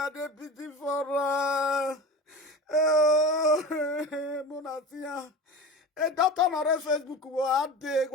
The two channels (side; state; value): both; normal; correlation 0.31